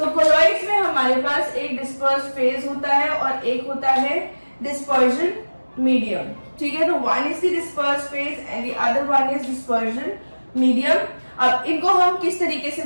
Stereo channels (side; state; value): both; inverted; correlation -1.00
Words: कोलॉइड्स में हमारे पास एक डिस्पर्स्ड फेज होता है और एक होता है डिस्पर्जन मीडियम। ठीक है, तो one is the dispersed phase and the other one is dispersion medium. अब इनको हम किस तरीके से